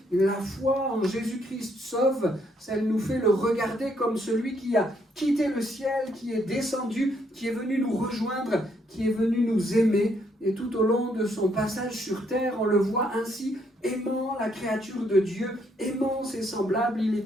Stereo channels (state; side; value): normal; both; correlation 0.72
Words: La foi en Jésus-Christ sauve, elle nous fait le regarder comme celui qui a quitté le ciel, qui est descendu, qui est venu nous rejoindre, qui est venu nous aimer. Et tout au long de son passage sur terre, on le voit ainsi, aimant la créature de Dieu, aimant ses semblables. Il